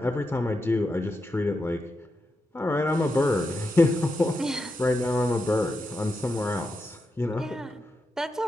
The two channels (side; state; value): both; normal; correlation 0.87